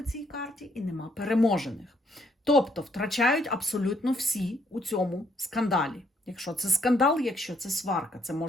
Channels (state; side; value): normal; both; correlation 0.69